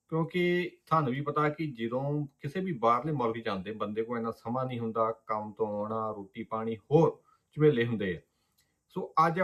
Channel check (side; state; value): both; identical; correlation 1.00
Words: ਕਿਉਂਕਿ ਤੁਹਾਨੂੰ ਵੀ ਪਤਾ ਕਿ ਜਦੋਂ ਕਿਸੇ ਵੀ ਬਾਹਰਲੇ ਮੁਲਕ ਜਾਂਦੇ ਬੰਦੇ ਕੋਲ ਇੰਨਾ ਸਮਾਂ ਨਹੀਂ ਹੁੰਦਾ, ਕੰਮ ਤੋਂ ਆਉਣਾ, ਰੋਟੀ ਪਾਣੀ ਹੋਰ ਝਮੇਲੇ ਹੁੰਦੇ ਆ। ਸੋ ਅੱਜ